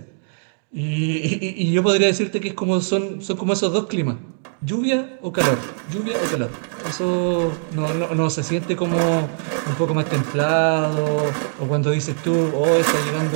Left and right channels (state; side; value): silent; left; digital silence